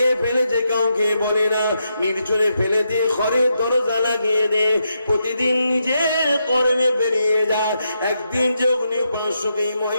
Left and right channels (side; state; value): both; inverted; correlation -0.82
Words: ফেলেছে কাউকে বলে না, নির্জনে ফেলে দিয়ে ঘরের দরজা লাগিয়ে দে। প্রতিদিন নিজের কর্মে বেরিয়ে যায়। একদিন যখন পাঁচশোকে